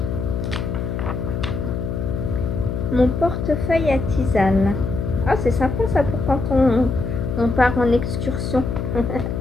Mon portefeuille à tisane. Ah, c'est sympa ça pour quand on part en excursion.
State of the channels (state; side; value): noise; left; hum, 3 dB below the sound